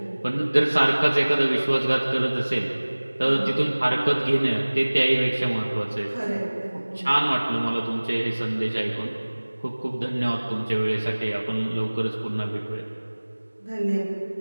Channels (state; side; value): inverted; both; correlation -1.00